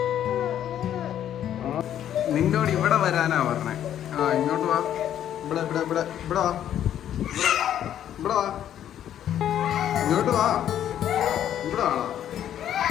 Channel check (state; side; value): quieter; right; 10.7 dB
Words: നിന്നോട് ഇവിടെ വരാനാ പറഞ്ഞേ. ആ ഇങ്ങോട്ട് വാ. ഇവിടെ ഇവിടെ ഇവിടെ ഇവിടെ വാ. ഇവിടെ വാ. ഇങ്ങോട്ട് വാ. ഇവിടെ വാണോ?